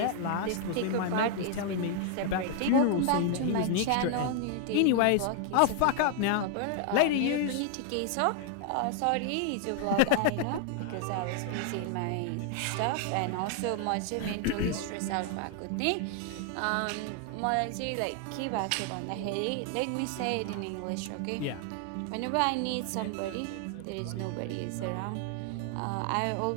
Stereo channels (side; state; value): both; different; correlation 0.00